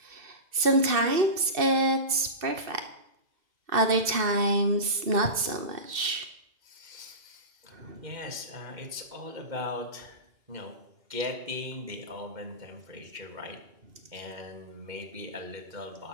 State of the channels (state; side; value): late; left; 2.6 ms